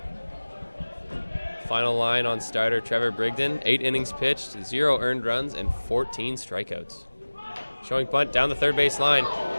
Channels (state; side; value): inverted; both; correlation -1.00